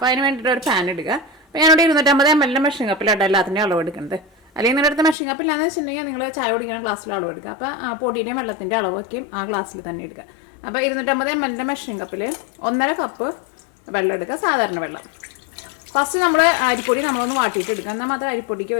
അതിന് വേണ്ടിയിട്ട് ഒരു പാൻ എടുക്കുക. അപ്പോൾ ഞാനിവിടെ 250 ml മെഷീൻ കപ്പിലാണ് എല്ലാത്തിൻ്റെയും അളവ് എടുക്കുന്നത്. അല്ലെങ്കിൽ നിങ്ങളുടെ അടുത്ത് മെഷീൻ കപ്പില്ലാന്ന് വെച്ചിട്ടുണ്ടെങ്കിൽ നിങ്ങൾ ചായ കുടിക്കുന്ന ഗ്ലാസ്സിൽ അളവ് എടുക്കുക. അപ്പോൾ പൊടിയുടെയും വെള്ളത്തിൻ്റെ അളവൊക്കെയും ആ ഗ്ലാസ്സിൽ തന്നെ എടുക്കുക. അപ്പോൾ 250 ml മെഷീൻ കപ്പിൽ 1.5 കപ്പ് വെള്ളം എടുക്കുക, സാധാരണ വെള്ളം. ഫസ്റ്റ് നമ്മൾ അരിപ്പൊടി നമ്മളൊന്ന് വാട്ടിയിട്ട് എടുക്കുക. എന്നാൽ മാത്രമേ അരിപ്പൊടിക്ക്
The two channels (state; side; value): drops out; right; at 5.2 s